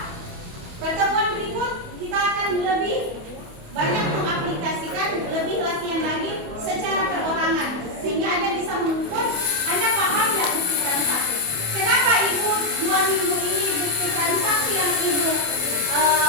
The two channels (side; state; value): left; late; 28 ms